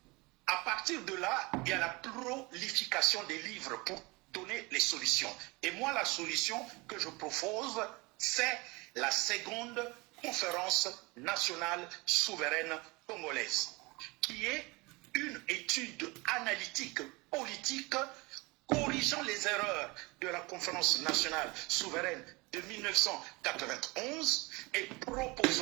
à partir de là, il y a la prolification des livres pour donner les solutions. Et moi, la solution que je propose, c'est la seconde conférence nationale souveraine congolaise, qui est une étude analytique politique corrigeant les erreurs de la conférence nationale souveraine de 1991 et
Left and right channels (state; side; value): quieter; left; 25.3 dB